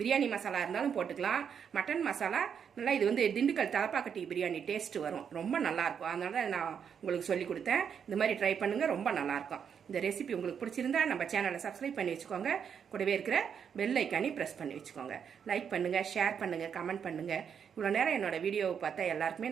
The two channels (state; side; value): quieter; left; 7.5 dB